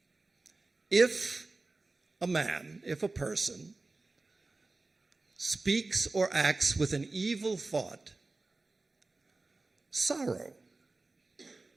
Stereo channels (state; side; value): quieter; left; 3.4 dB